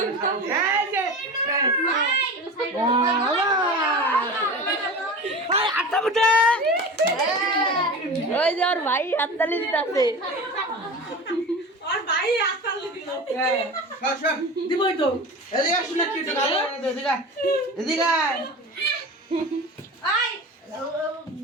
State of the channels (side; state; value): both; normal; correlation 0.31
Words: এই যে ভাই আটা বুটে ওই যে ওর ভাই হাততালি দিতেছে আর ভাই আসল দিল সব দিবই তো এদিকে শুনে কি তো ভালো এদিকে আই